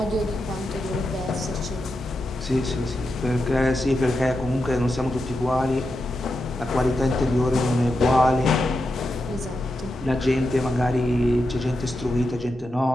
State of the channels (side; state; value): both; normal; correlation 0.87